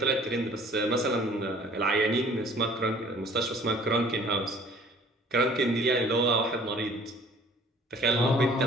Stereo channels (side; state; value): both; normal; correlation 0.52